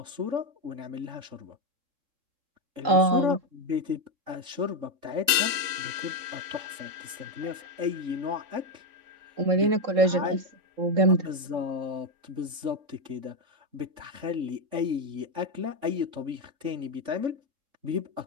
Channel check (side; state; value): left; late; 3.5 ms